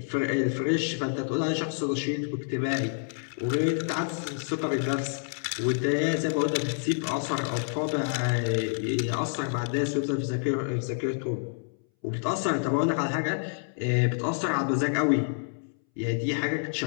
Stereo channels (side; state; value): right; silent; 59 dB below the other